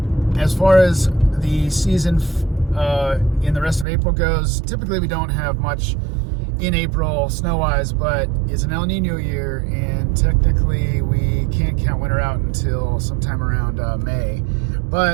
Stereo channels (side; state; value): left; drops out; at 3.9 s